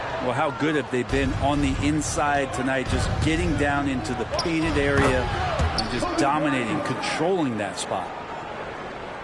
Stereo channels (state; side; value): identical; both; correlation 1.00